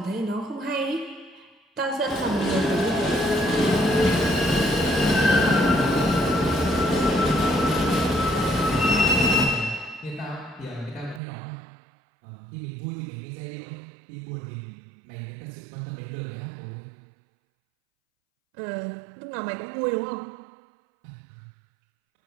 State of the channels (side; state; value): left; drops out; at 11.2 s